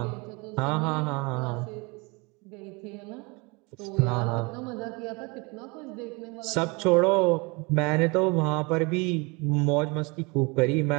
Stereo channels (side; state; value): left; quieter; 28.2 dB